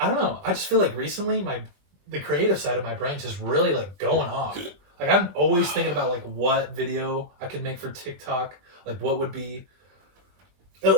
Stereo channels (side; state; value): left; late; 21 ms